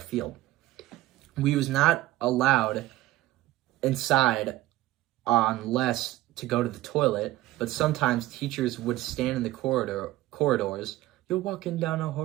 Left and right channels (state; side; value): quieter; left; 16.3 dB